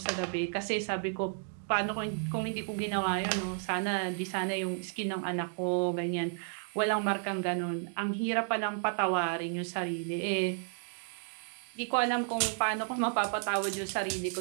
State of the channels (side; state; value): left; silent; 56 dB below the other